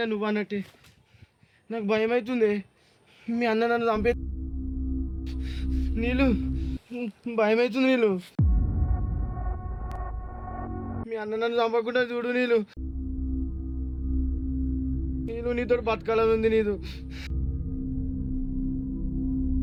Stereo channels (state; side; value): identical; both; correlation 1.00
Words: నువ్వు అన్నట్టే. నాకు భయం అవుతుంది, మీ అన్న నన్ను చంపే. నీళ్ళు భయం అవుతుంది. నీళ్ళు మీ అన్న నన్ను చంపకుండా చూడు. నీళ్ళు నీళ్ళు నీతో బతకాలని ఉంది.